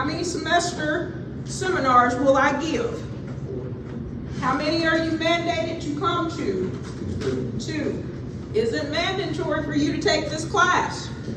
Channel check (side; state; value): both; identical; correlation 1.00